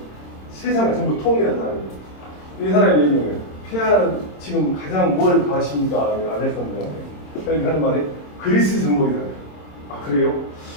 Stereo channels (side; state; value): right; late; 26 ms